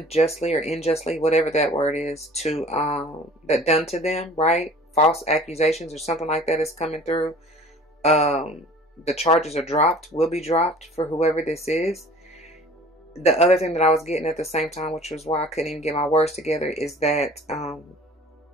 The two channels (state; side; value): normal; both; correlation 0.47